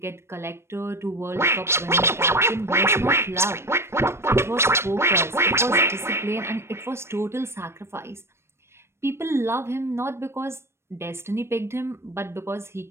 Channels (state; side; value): late; left; 0.12 ms